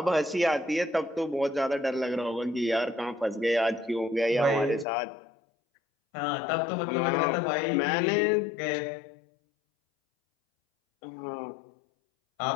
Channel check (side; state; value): right; drops out; at 4.9 s